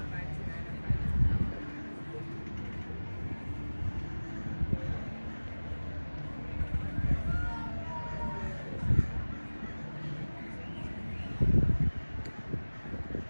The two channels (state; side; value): inverted; both; correlation -1.00